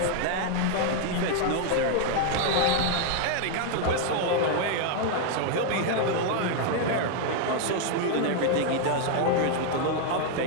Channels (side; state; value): both; different; correlation 0.00